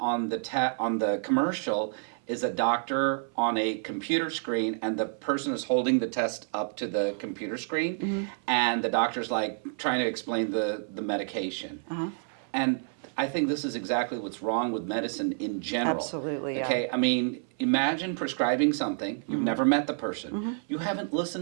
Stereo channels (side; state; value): left; silent; 59 dB below the other